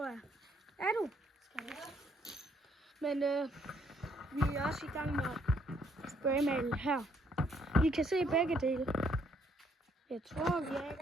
jeg. Er du? Men vi er også i gang med at spraymale her. I kan se begge dele. Jeg tror, vi er i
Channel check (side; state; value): both; normal; correlation 0.69